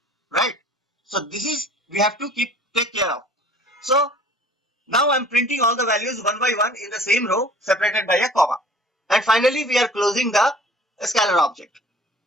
right? So this is, we have to take care of. So now I'm printing all the values one by one in the same row separated by a comma. And finally, we are closing the scalar object.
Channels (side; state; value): both; normal; correlation 0.50